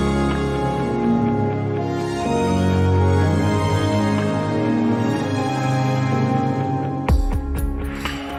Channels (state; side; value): identical; both; correlation 1.00